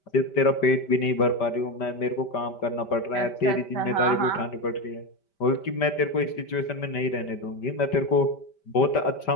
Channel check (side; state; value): right; late; 5.1 ms